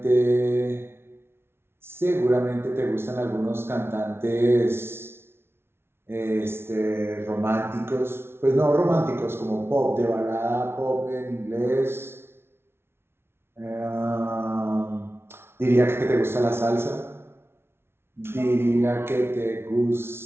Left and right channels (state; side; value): late; left; 0.12 ms